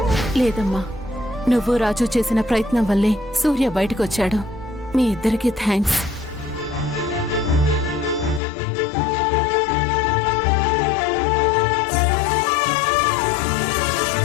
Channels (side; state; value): right; drops out; at 8.4 s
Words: లేదమ్మా, నువ్వు రాజు చేసిన ప్రయత్నం వల్లే సూర్య బయటకొచ్చాడు. మీ ఇద్దరికీ థ్యాంక్స్.